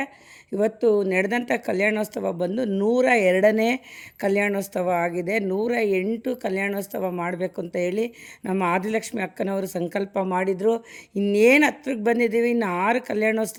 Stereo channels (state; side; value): identical; both; correlation 1.00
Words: ಇವತ್ತು ನಡೆದಂಥ ಕಲ್ಯಾಣೋತ್ಸವ ಬಂದು 102ನೇ ಕಲ್ಯಾಣೋತ್ಸವ ಆಗಿದೆ. 108 ಕಲ್ಯಾಣೋತ್ಸವ ಮಾಡಬೇಕು ಅಂತ ಹೇಳಿ ನಮ್ಮ ಆದಿಲಕ್ಷ್ಮಿ ಅಕ್ಕನವರು ಸಂಕಲ್ಪ ಮಾಡಿದರು. ಇನ್ನೇನು ಹತ್ರಕ್ಕೆ ಬಂದಿದ್ದೀವಿ, ಇನ್ನು 6